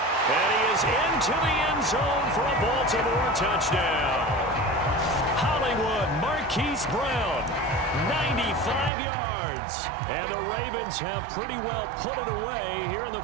And he is into the end zone for a Baltimore touchdown. Hollywood, Marquise Brown, 95 yards. And the Ravens have pretty well put it away here in the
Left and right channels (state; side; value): drops out; left; at 8.9 s